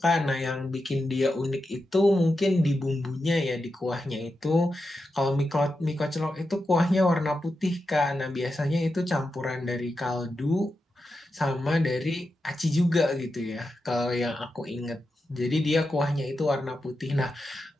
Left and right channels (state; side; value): normal; both; correlation 0.89